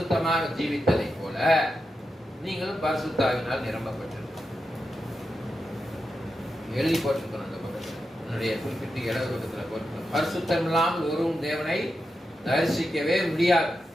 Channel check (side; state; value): both; normal; correlation 0.88